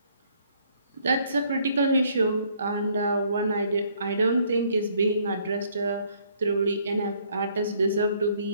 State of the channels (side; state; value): both; inverted; correlation -0.65